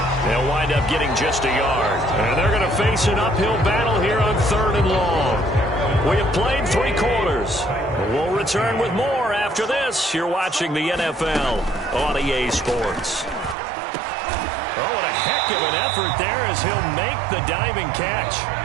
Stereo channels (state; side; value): drops out; left; at 13.6 s